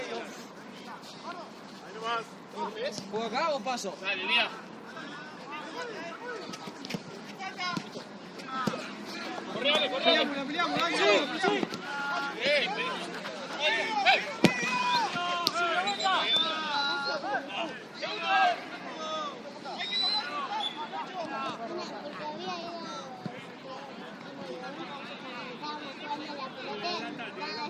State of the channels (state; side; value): identical; both; correlation 1.00